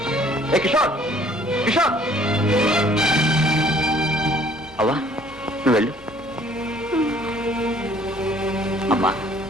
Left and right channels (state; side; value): normal; both; correlation 0.58